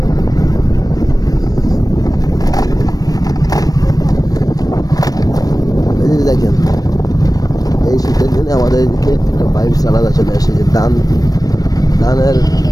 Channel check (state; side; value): late; right; 0.18 ms